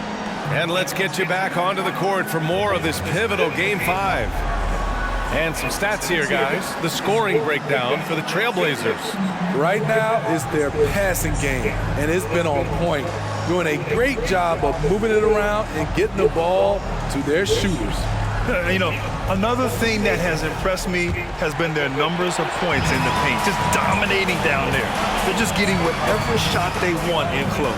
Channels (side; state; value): both; identical; correlation 1.00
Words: And let's get you back onto the court for more of this pivotal Game 5. And some stats here, guys. The scoring breakdown for the Trailblazers. Right now, it's their passing game, and it's been on point, doing a great job of moving it around and getting the ball to their shooters. You know, another thing that has impressed me has been their numbers of points in the paint, just dominating down there. They're just getting whatever shot they want in